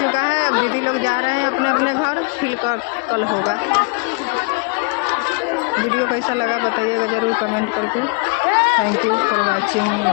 है। अब दीदी लोग जा रहे हैं अपने अपने घर, फिर कल होगा। वीडियो कैसा लगा बताइएगा ज़रूर कमेंट करके। Thank you for watching,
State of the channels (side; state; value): right; quieter; 32.3 dB